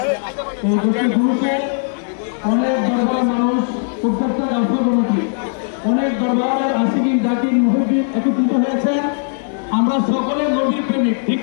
দরবার মানুষ প্রত্যেকটা রাষ্ট্রপতি অনেক দরবারের আশিকিন জাকির মুহিদ্দিন একত্রিত হয়েছেন। আমরা সকলে নবীর প্রেমিক, ঠিক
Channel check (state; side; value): silent; right; 67 dB below the other